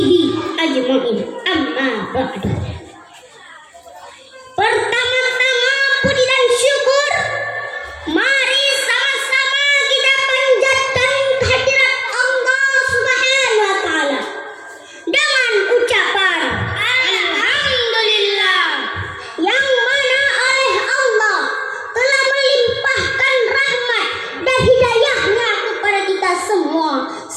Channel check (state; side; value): identical; both; correlation 1.00